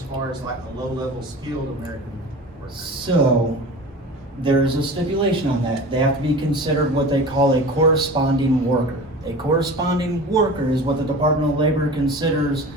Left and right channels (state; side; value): normal; both; correlation 0.35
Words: far as like a low-level skilled American worker? So, there's a stipulation on that. They have to be considered what they call a corresponding worker. A corresponding worker is what the Department of Labor considers